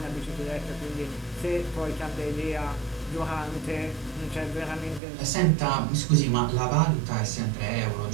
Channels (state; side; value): drops out; left; at 5.0 s